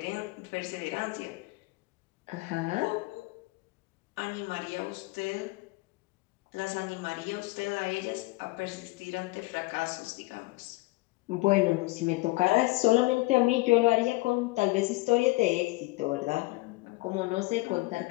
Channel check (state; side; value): quieter; right; 22.2 dB